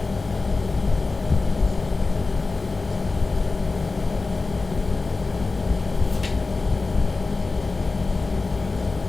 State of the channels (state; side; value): quieter; right; 3.7 dB